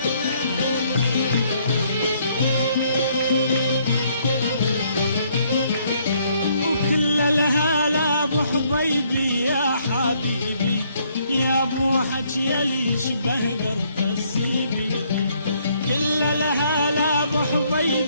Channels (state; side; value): inverted; both; correlation -0.68